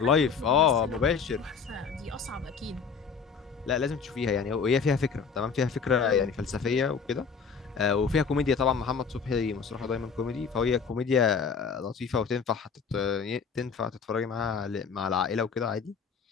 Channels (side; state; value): right; quieter; 5.9 dB